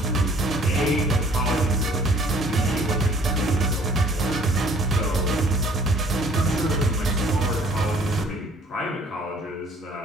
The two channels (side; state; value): both; normal; correlation 0.56